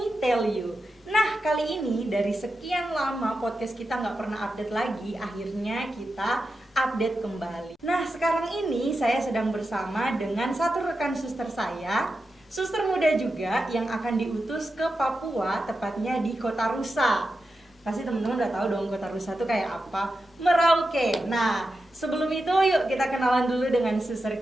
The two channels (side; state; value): both; normal; correlation 0.90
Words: Tell You. Nah, kali ini dari sekian lama podcast kita nggak pernah update lagi, akhirnya kita update kembali. Nah, sekarang ini saya sedang bersama dengan satu rekan suster saya, suster muda juga yang akan diutus ke Papua, tepatnya di Kota Rusa. Pasti teman-teman udah tahu dong Kota Rusa itu kayak apa, Merauke. Nah, sebelum itu yuk kita kenalan dulu dengan suster